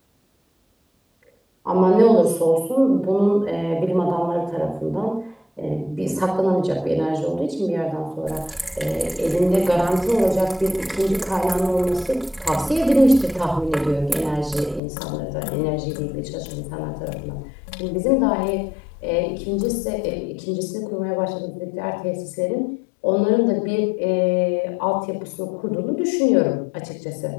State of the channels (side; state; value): right; drops out; at 14.8 s